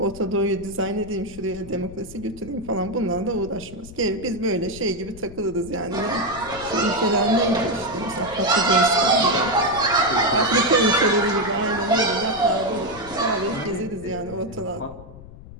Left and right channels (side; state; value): left; noise; rumble, 17 dB below the sound